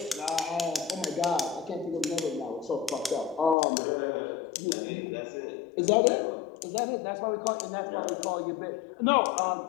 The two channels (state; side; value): drops out; right; at 3.6 s